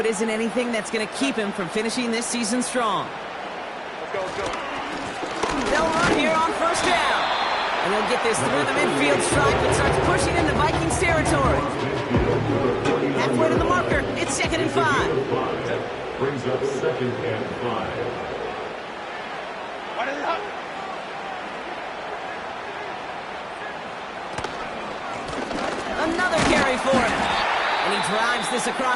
isn't anything that's going to keep him from finishing this season strong. Let's go. They'll run here on first down. And they'll get this through the midfield stripe and starts pushing into Vikings territory. Halfway to the marker. It's 2nd and 5. Brings up 2nd and 5. Another carry for him. And he drives this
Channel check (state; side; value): identical; both; correlation 1.00